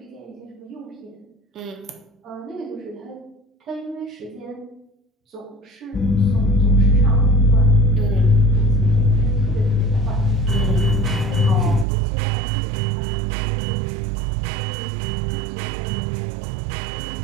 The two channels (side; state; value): left; drops out; at 11.9 s